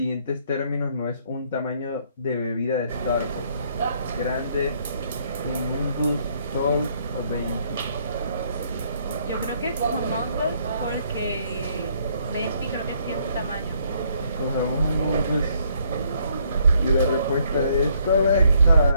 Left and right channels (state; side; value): inverted; both; correlation -0.68